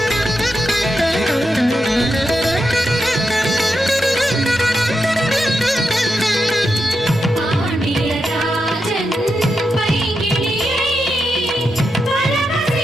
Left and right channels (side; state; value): both; normal; correlation 0.86